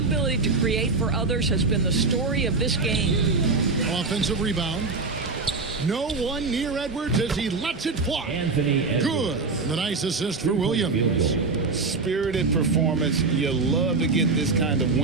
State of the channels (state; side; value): quieter; left; 4.0 dB